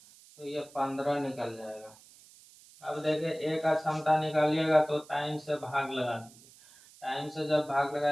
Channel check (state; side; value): noise; right; hiss, 23 dB below the sound